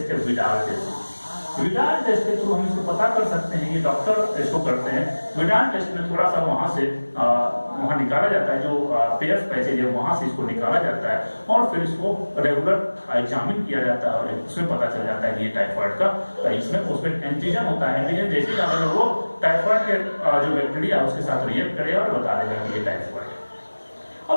है विडाल टेस्ट। विडाल टेस्ट के थ्रू हम इसको पता कर सकते हैं, ये डॉक्टर इसको करते हैं। विडाल टेस्ट में थोड़ा सा वहां से वहां निकाला जाता है, जो पेयर्स पैसेज है वहां से इसको निकाला जाता है और फिर इसको रेगुलर एग्जामिन किया जाता है और उसमें पता चल जाता है कि ये टाइफाइड का, इसमें उसमें एंटीजन होता है। एंटीजन जैसे अगर वो टाइफाइड के जो बैक्टीरिया उसके साथ रिएक्ट करेगा और बता देगा कि ये टाइफाइड है।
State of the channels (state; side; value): inverted; both; correlation -1.00